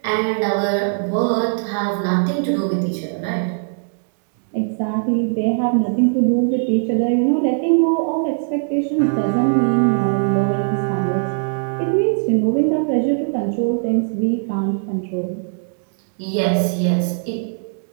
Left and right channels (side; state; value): left; silent; 66 dB below the other